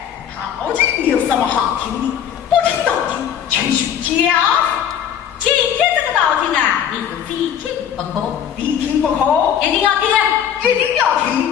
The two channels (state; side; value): quieter; right; 9.1 dB